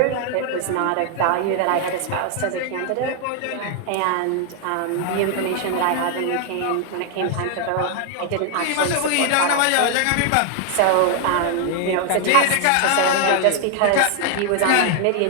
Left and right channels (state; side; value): different; both; correlation 0.00